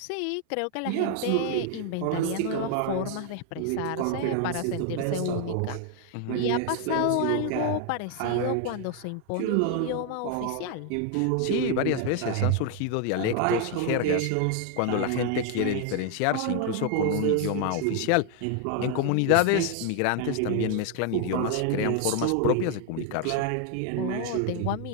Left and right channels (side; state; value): both; different; correlation 0.00